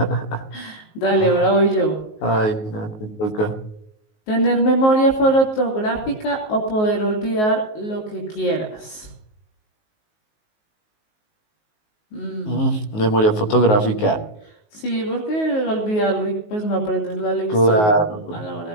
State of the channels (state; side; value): late; right; 19 ms